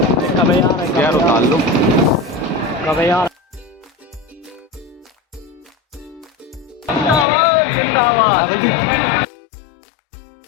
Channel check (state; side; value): drops out; right; at 7.2 s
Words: यार उतार लो कब यार जिंदाबाद